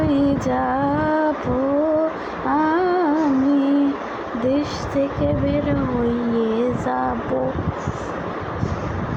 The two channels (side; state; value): both; identical; correlation 1.00